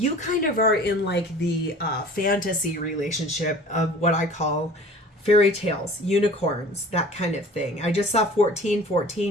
kind of are in like the fantasy relationship of what I call fairy tales, unicorns, that kind of thing. I just saw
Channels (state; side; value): normal; both; correlation 0.45